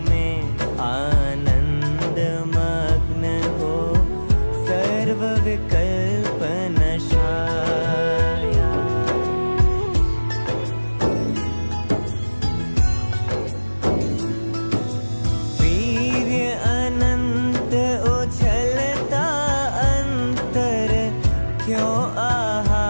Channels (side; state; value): both; inverted; correlation -1.00